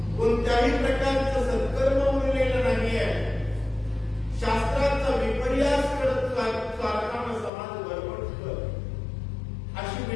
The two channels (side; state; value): right; drops out; at 7.5 s